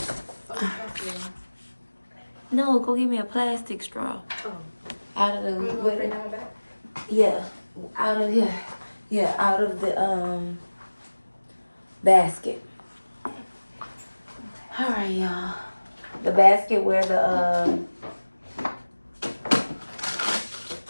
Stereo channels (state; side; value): inverted; both; correlation -1.00